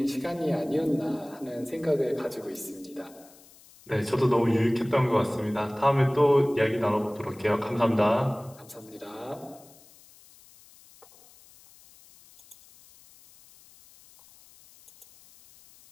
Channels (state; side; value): noise; left; hiss, 25 dB below the sound